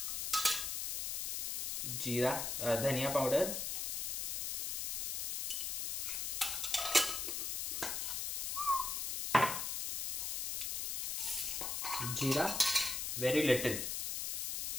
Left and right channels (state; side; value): noise; left; hiss, 1 dB below the sound